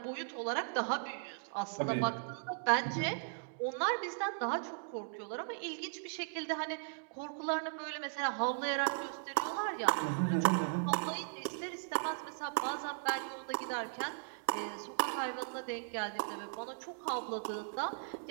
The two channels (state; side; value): silent; left; digital silence